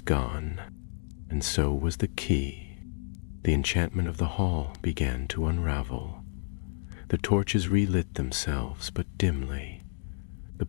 and so was the key. The enchantment of the hall began to unravel. The torches relit themselves, but dimly. The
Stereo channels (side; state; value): right; silent; 58 dB below the other